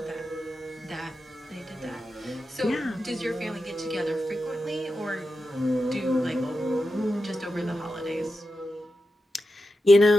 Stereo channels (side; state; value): both; normal; correlation 0.90